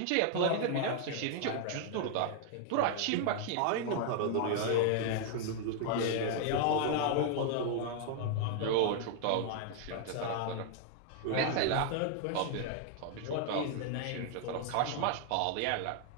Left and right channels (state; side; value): different; both; correlation 0.00